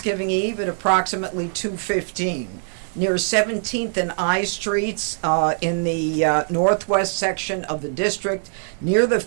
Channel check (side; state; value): left; silent; 63 dB below the other